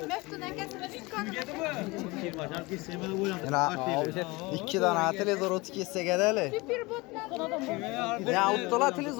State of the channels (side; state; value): right; quieter; 23.7 dB